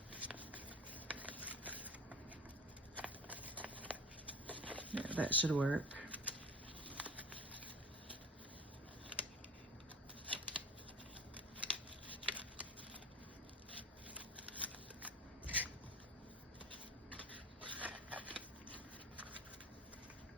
yeah, that should work.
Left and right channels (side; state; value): both; normal; correlation 0.34